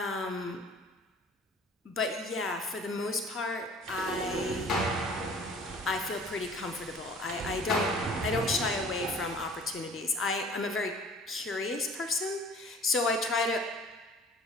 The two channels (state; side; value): normal; both; correlation 0.48